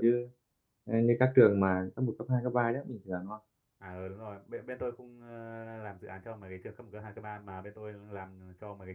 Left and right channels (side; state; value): both; identical; correlation 1.00